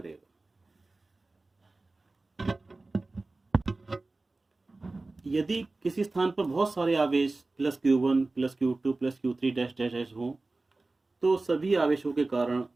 यदि किसी स्थान पर बहुत सारे आवेश +q1 +q2 +q3 dash dash dash हों तो सभी आवेशों के कारण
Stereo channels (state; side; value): quieter; left; 3.3 dB